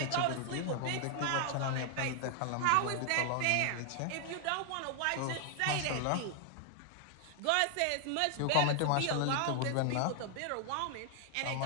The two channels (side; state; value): both; different; correlation 0.00